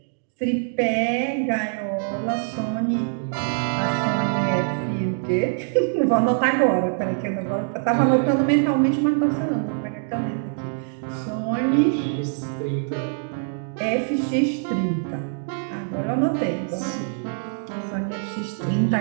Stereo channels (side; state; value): left; silent; digital silence